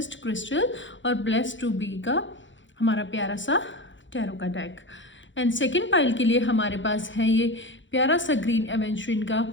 क्रिस्टल और ब्लेस्ड टू बी का हमारा प्यारा सा टैरो का डेक। एंड सेकेंड पाइल के लिए हमारे पास है ये प्यारा सा ग्रीन एवेंचुरिन का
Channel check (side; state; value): right; late; 0.55 ms